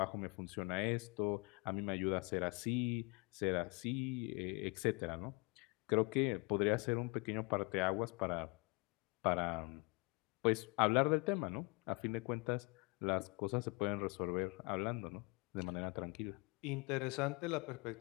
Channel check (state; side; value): quieter; right; 29.6 dB